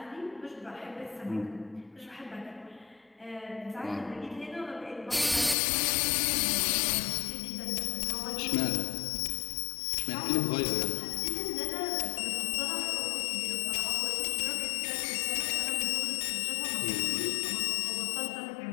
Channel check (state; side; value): drops out; right; at 5.6 s